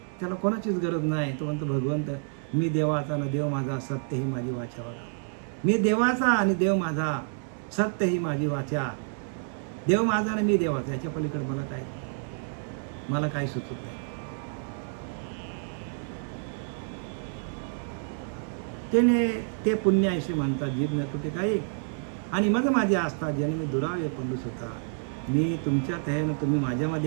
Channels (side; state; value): left; silent; 59 dB below the other